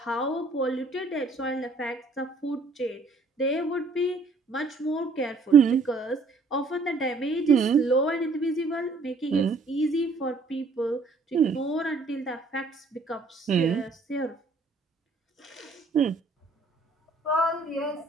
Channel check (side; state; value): left; quieter; 3.5 dB